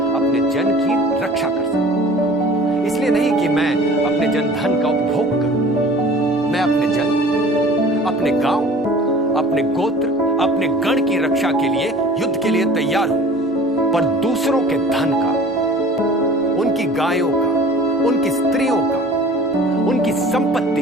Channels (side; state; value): both; normal; correlation 0.45